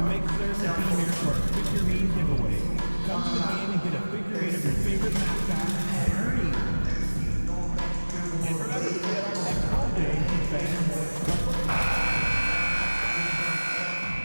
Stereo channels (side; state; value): both; inverted; correlation -1.00